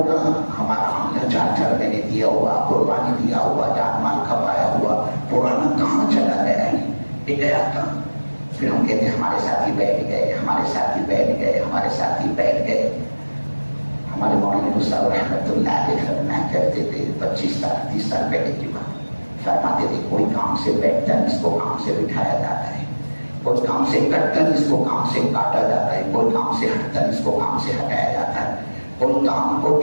کا ہمارا عملہ 4 مہینے دیا ہوا، قربانی دیا ہوا، جان مال کھپایا ہوا، پرانا کہاں چلا گیا ہے؟ یہ گیا کہاں؟ پھر ہم کہتے ہیں ہمارے ساتھی بیٹھ گئے، ہمارے ساتھی بیٹھ گئے، ہمارے ساتھی بیٹھ گئے۔ ہمارے مولانا صاحب رحمۃ اللہ علیہ فرمایا کرتے تھے 25 سال 30 سال پہلے کی بات، فرماتے تھے کوئی کام سے بیٹھتا ہے اس کو کام سے بٹھایا جاتا ہے، کوئی کام سے کٹتا ہے اس کو کام سے کاٹا جاتا ہے، کوئی کام سے ہٹتا ہے اس کو کام سے ہٹایا جاتا ہے، کوئی کام کو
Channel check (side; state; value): both; inverted; correlation -1.00